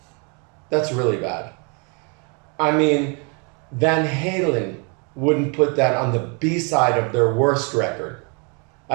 That's really bad. I mean, Van Halen wouldn't put that on the B-side of their worst record.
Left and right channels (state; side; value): quieter; left; 34.3 dB